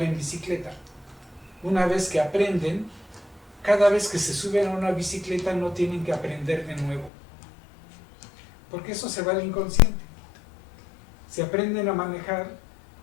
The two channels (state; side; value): drops out; right; at 7.1 s